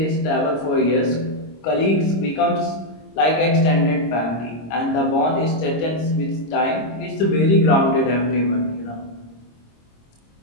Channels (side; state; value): right; late; 26 ms